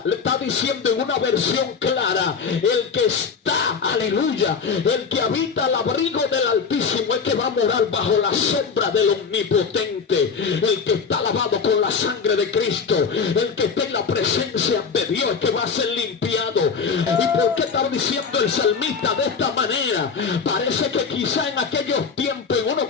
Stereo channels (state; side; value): quieter; right; 5.7 dB